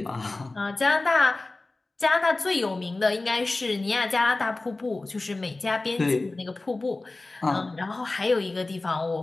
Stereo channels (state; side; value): quieter; right; 3.2 dB